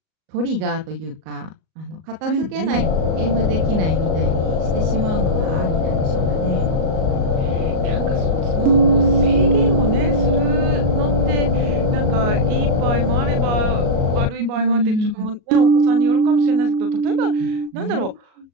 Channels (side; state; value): left; late; 38 ms